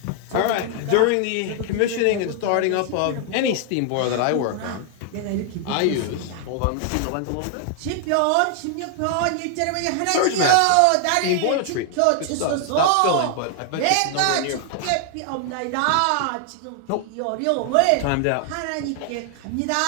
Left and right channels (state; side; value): different; both; correlation 0.00